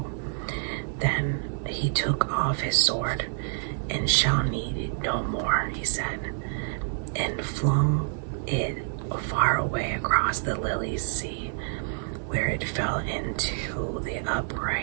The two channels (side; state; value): left; silent; digital silence